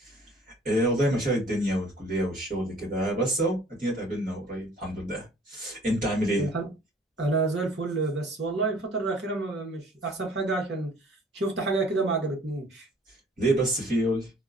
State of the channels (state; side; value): normal; both; correlation 0.54